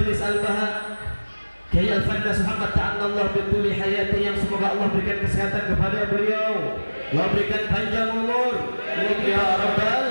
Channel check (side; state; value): both; inverted; correlation -1.00